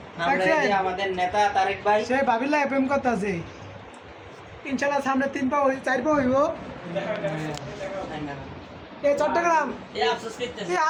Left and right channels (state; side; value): identical; both; correlation 1.00